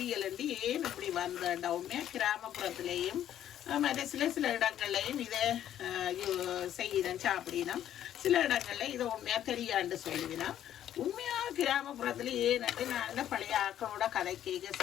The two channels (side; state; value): right; quieter; 11.1 dB